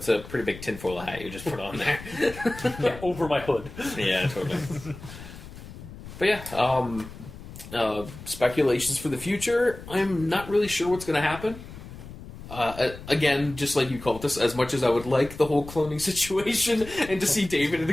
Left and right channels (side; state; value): left; noise; rumble, 14 dB below the sound